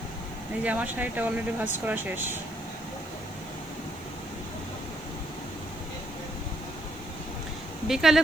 এই যে আমার শাড়িটা অলরেডি ভাঁজ করা শেষ। বিকালে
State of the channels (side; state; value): left; noise; hiss, 23 dB below the sound